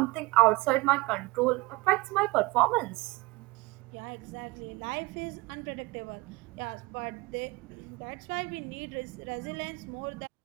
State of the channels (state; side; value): quieter; left; 23.3 dB